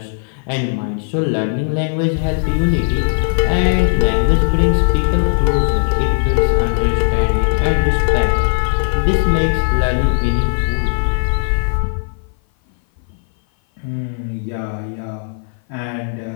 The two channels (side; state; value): right; silent; 57 dB below the other